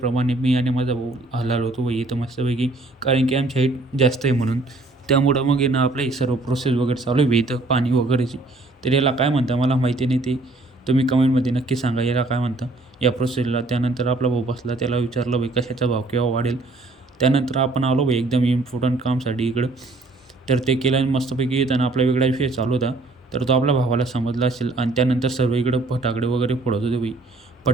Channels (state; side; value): quieter; left; 3.0 dB